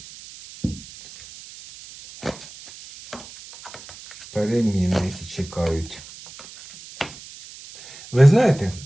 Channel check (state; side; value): noise; right; hiss, 17 dB below the sound